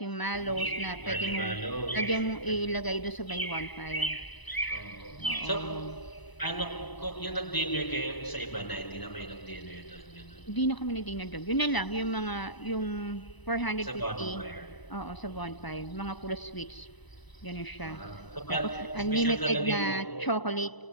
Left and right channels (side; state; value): right; late; 1.0 ms